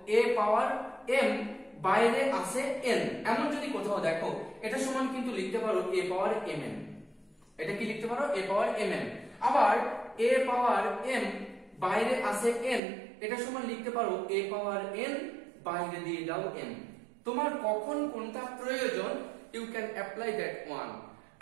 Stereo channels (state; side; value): drops out; left; at 12.8 s